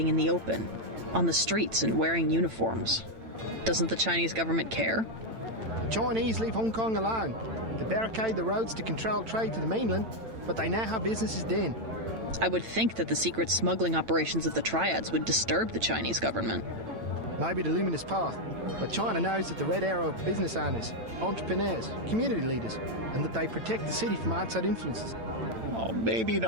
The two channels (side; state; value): left; late; 8.9 ms